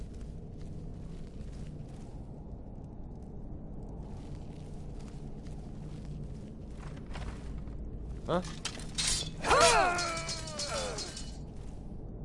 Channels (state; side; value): identical; both; correlation 1.00